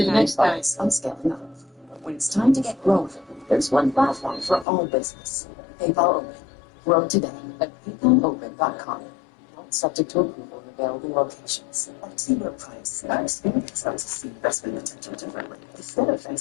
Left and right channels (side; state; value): right; drops out; at 4.7 s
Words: next time. I'm scaling up. When it's time to get growing, there's one platform for all business. PayPal Open. Grow today at PayPalOpen.com. Subject to approval in available locations. At Zero Price, our experience helps us see investment potential differently. Instead of